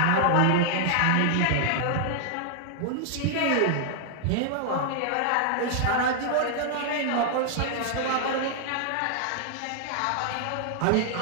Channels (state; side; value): different; both; correlation -0.01